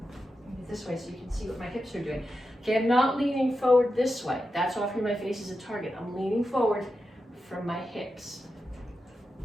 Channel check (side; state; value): both; normal; correlation 0.89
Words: this way so you can see what my hips are doing. Okay, I'm not leaning forward this way. That's offering my face as a target. I'm leaning forward from my hips.